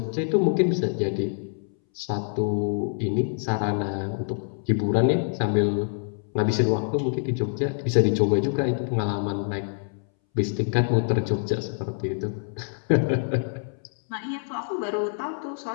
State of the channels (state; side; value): silent; right; 61 dB below the other